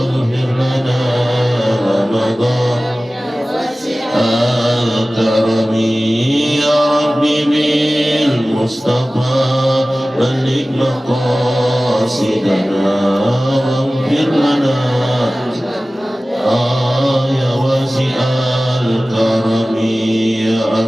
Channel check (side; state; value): both; normal; correlation 0.97